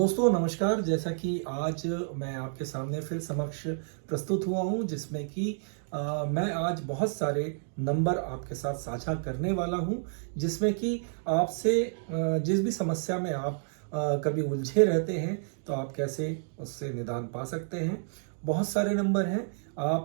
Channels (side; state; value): left; silent; digital silence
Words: नमस्कार। जैसा कि आज मैं आपके सामने फिर समक्ष प्रस्तुत हुआ हूं, जिसमें कि मैं आज बहुत सारे नंबर आपके साथ साझा करने वाला हूं, जिसमें कि आपसे जिस भी समस्या में आप कभी उलझे रहते हैं तो आप कैसे उससे निदान पा सकते हैं। बहुत सारे नंबर हैं।